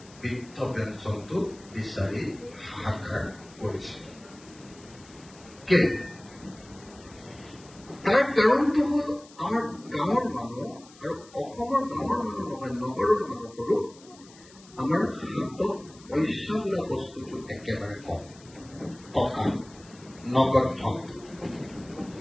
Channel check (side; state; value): left; noise; hiss, 23 dB below the sound